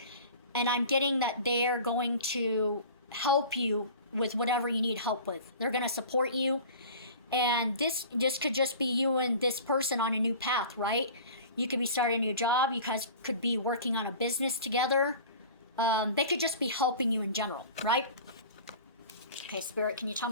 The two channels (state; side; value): inverted; both; correlation -0.40